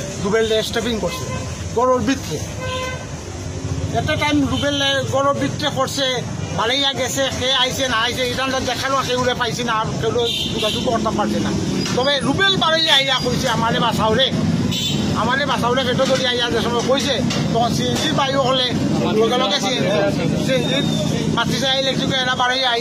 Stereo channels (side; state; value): both; identical; correlation 1.00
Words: রুবেল স্টেপিং করছে গরুর ভিতরে একটা টাইম রুবেল গরুর ভিতরে করছে ভালোইয়া গেছে সে আইসে না আইসে এটা দেখালো সেগুলো পাইছি না আর কেউ যোগাযোগ করতে পারছে না তবে রুবেল বাড়ি আইয়া কইছে আমারে বাসাউরে পেটো ধরি আইয়া যে সময় কইছে তখন সিএনজি বাইও হলে লগে লগে সিএনজি মাতিছে ইলেকট্রিক এরা বাড়ি